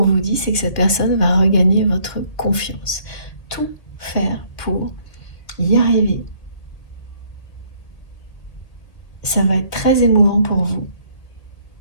vous dit, c'est que cette personne va regagner votre confiance. Tout faire pour y arriver. Ça va être très émouvant pour vous.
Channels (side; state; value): right; late; 1.9 ms